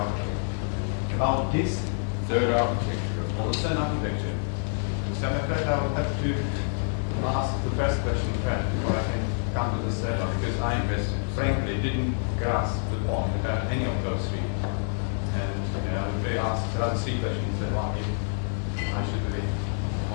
About this Third architecture of course. Western architecture. So I'm afraid I will have to ask the first question first before I can come to this second, because I You missed it, sorry. frankly didn't grasp the point about any of those three. And I would be asked the other three questions that one I should really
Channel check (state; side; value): silent; right; 60 dB below the other